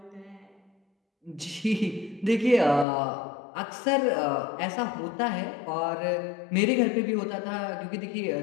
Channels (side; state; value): right; drops out; at 2.9 s